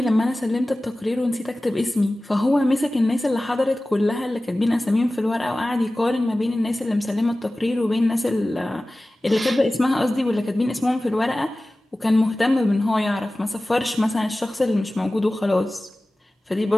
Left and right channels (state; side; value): normal; both; correlation 0.97